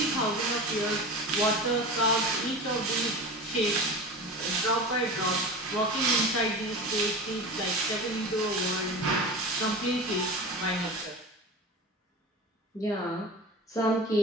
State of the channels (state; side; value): normal; both; correlation 0.31